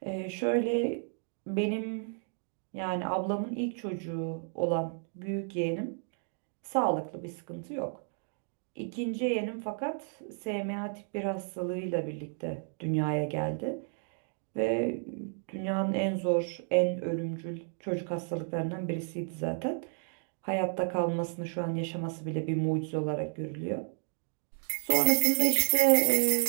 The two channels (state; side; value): silent; left; 56 dB below the other